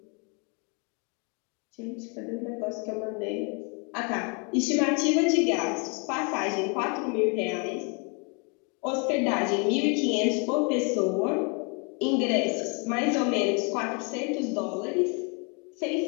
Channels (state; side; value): quieter; right; 34.7 dB